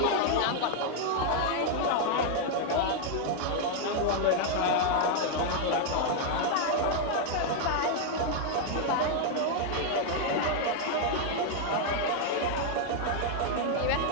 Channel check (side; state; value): both; different; correlation 0.00